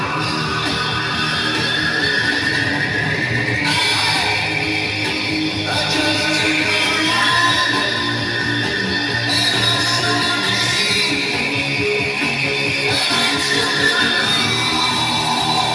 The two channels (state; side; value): identical; both; correlation 1.00